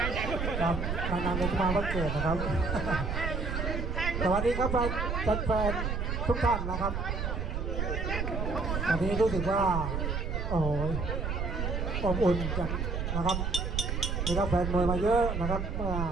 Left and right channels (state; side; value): noise; right; rumble, 2 dB below the sound